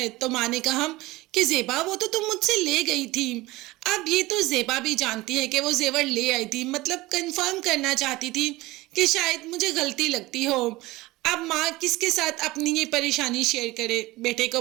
तो माँ ने कहा कि ज़ेबा, वो तो तुम मुझसे ले गई थी। अब ये तो ज़ेबा भी जानती है कि वो जेवर ले आई थी, मतलब कंफर्म करना चाहती थी कि शायद मुझे गलती लगती हो। अब माँ किसके साथ अपनी ये परेशानी शेयर करे? बेटे को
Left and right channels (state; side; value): quieter; left; 19.8 dB